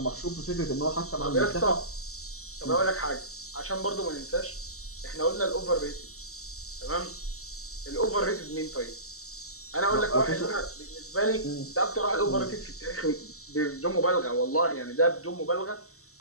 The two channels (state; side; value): late; right; 0.64 ms